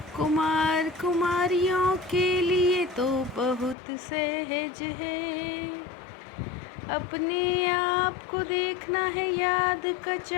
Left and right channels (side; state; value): right; drops out; at 3.8 s